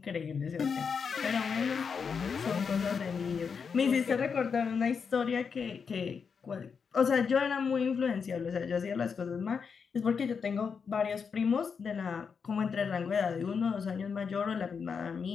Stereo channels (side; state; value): right; quieter; 6.0 dB